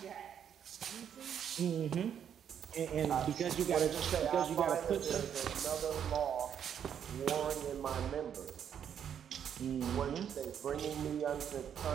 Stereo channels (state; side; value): quieter; left; 8.7 dB